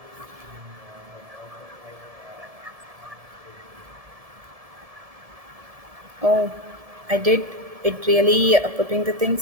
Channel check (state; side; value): late; left; 1.7 ms